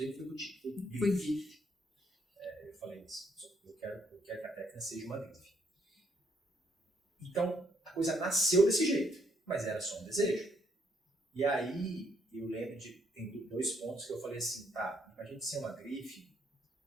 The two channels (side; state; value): both; normal; correlation 0.71